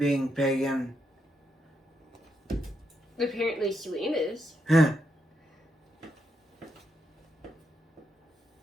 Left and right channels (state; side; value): normal; both; correlation 0.81